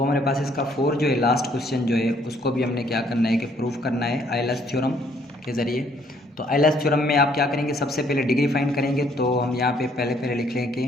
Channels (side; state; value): both; normal; correlation 0.65